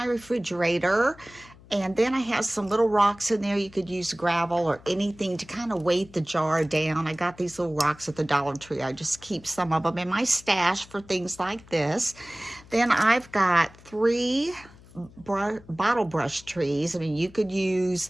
refrigerator. And then I have some little rocks in there. You could use gravel or anything to kind of weight the jar down. I got these little rocks at the Dollar Tree. I just keep some of them in my stash for things like this. Then I've got 3 bottle brush trees. I mean, you could use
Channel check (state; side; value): noise; left; hum, 23 dB below the sound